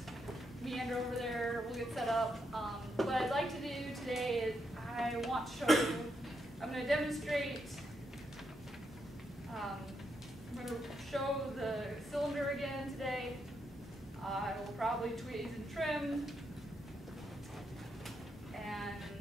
meander over there, we'll get set up. What I'd like to do today is I want to show you, I'm going to demonstrate, I'm going to show the cylinder again today. I will probably tweeze and trim, and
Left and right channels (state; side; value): normal; both; correlation 0.81